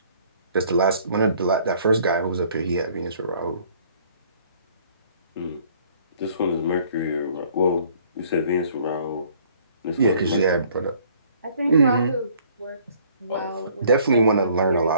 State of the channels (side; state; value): both; inverted; correlation -0.59